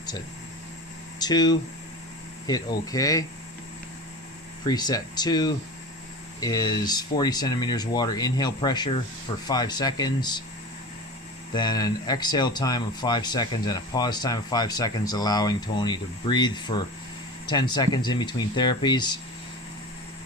to 2, hit OK. Preset 2 is 40 centimeters water inhale pressure for 5 seconds, then an exhale time of 5 seconds and a pause time of 5 seconds, allowing Tony to breathe for 10 seconds in between therapies.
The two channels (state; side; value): normal; both; correlation 0.31